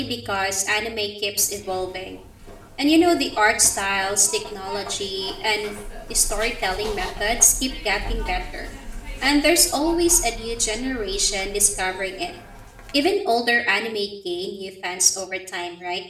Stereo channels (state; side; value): identical; both; correlation 1.00